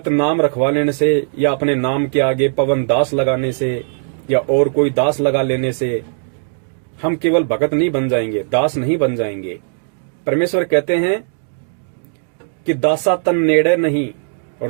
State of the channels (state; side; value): silent; left; digital silence